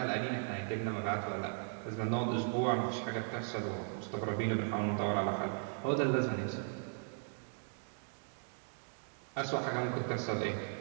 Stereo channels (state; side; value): silent; left; 53 dB below the other